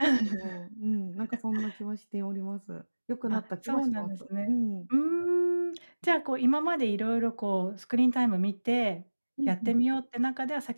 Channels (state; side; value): inverted; both; correlation -1.00